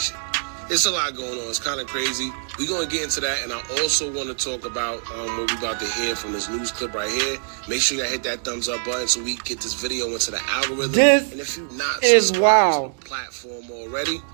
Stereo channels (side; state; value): left; silent; 63 dB below the other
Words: It's a lot going on. It's kind of crazy. We're going to get into that, and I also want to talk about what we're about to hear from this news clip right here. Make sure you hit that thumbs up button so we can get this video into the algorithm. This and if you're not is subscribed wow. to the platform already,